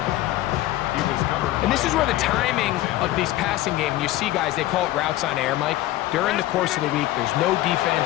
And this is where the timing of these passing games, you see guys, they call it routes on air, Mike. During the course of the week, there's no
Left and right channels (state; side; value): quieter; right; 15.5 dB